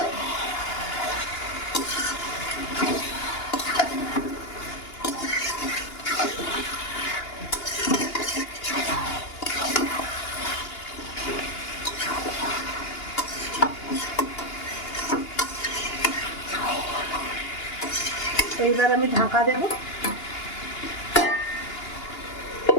এইবার আমি ঢাকা দেব।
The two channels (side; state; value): right; late; 2.9 ms